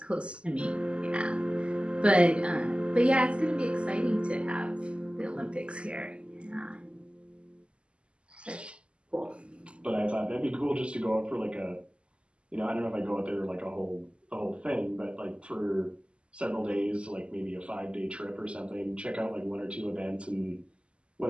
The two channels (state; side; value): late; left; 0.054 ms